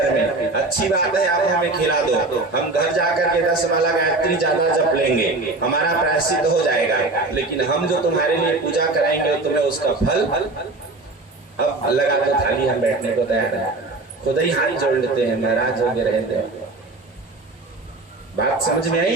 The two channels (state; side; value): quieter; left; 3.2 dB